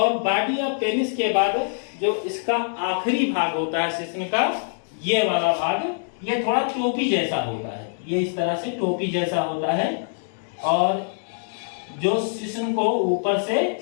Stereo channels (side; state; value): right; silent; digital silence